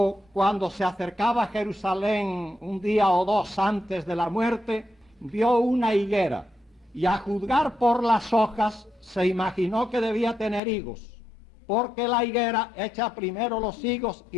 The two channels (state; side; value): drops out; right; at 10.6 s